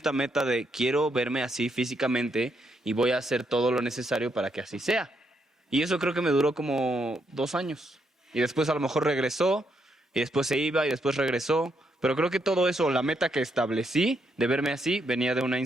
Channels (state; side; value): normal; both; correlation 0.77